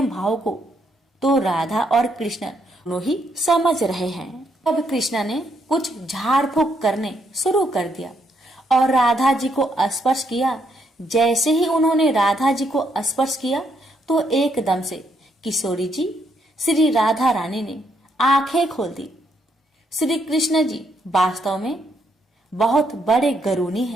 भाव को तो राधा और कृष्ण दोनों ही समझ रहे हैं। अब कृष्ण ने कुछ झाड़ फूक करने शुरू कर दिया और राधा जी को स्पर्श किया। जैसे ही उन्होंने राधा जी को स्पर्श किया तो एकदम से किशोरी जी श्री राधा रानी ने आंखें खोल दी। श्री कृष्ण जी वास्तव में बहुत बड़े गरुणी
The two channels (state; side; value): normal; both; correlation 0.75